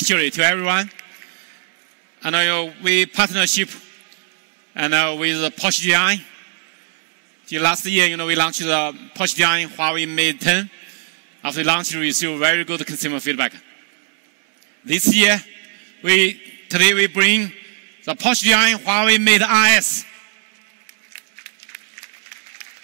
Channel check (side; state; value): left; silent; 59 dB below the other